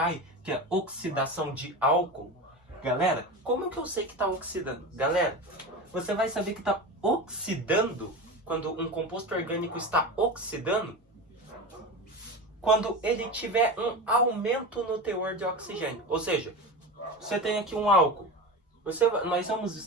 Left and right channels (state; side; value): normal; both; correlation 0.25